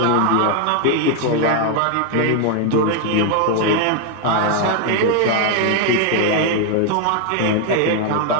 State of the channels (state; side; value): different; both; correlation 0.01